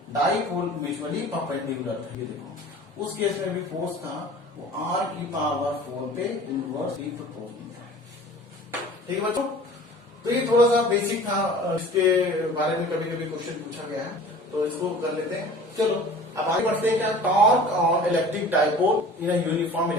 डाइपोल म्यूचुअली परपेंडिकुलर था। ये देखो उस केस में भी फोर्स था वो r की पावर 4 पे इनवर्सली प्रोपोर्शनल था। ठीक है बच्चों, तो ये थोड़ा सा बेसिक था, इसके बारे में कभी कभी क्वेश्चन पूछा गया है, तो इसको कर लेते हैं। चलो अब आगे बढ़ते हैं। क्या, torque on electric dipole in uniform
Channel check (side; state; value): both; normal; correlation 0.44